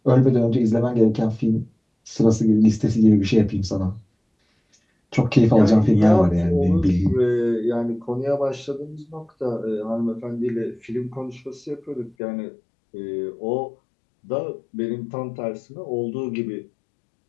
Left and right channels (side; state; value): right; drops out; at 12.2 s